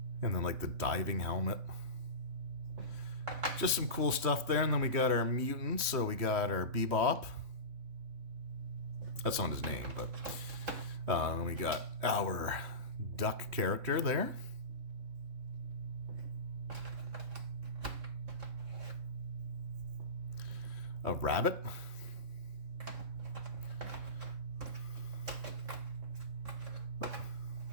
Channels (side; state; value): left; late; 3.2 ms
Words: And then like the diving helmet. Just some cool stuff there. And then we got our mutants. So we got our Bebop. That's not his name, but then we got our duck character there. A rabbit.